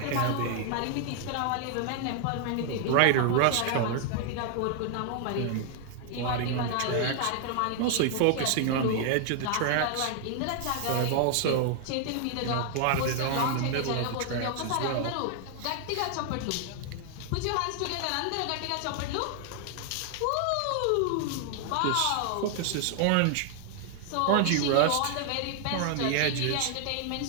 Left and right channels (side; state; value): both; different; correlation 0.00